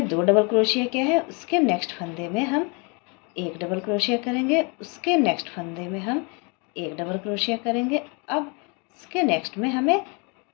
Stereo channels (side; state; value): right; quieter; 32.3 dB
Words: 2 डबल क्रोशिया किया है। उसके नेक्स्ट फंदे में हम 1 डबल क्रोशिया करेंगे, उसके नेक्स्ट फंदे में हम 1 डबल क्रोशिया करेंगे। अब इसके नेक्स्ट में हमें